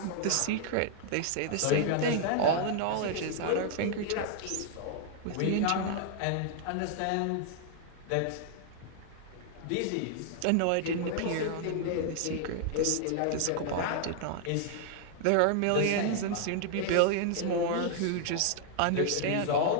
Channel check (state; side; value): different; both; correlation 0.00